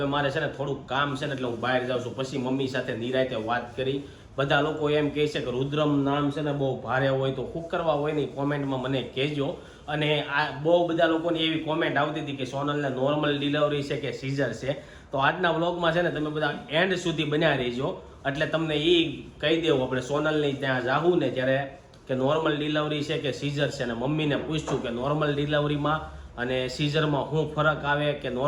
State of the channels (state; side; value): identical; both; correlation 1.00